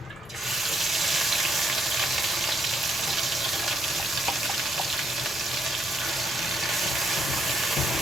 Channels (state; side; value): normal; both; correlation 0.74